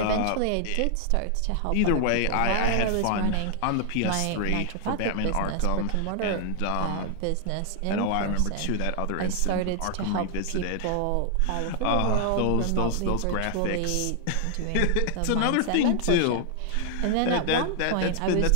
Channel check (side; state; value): both; different; correlation 0.00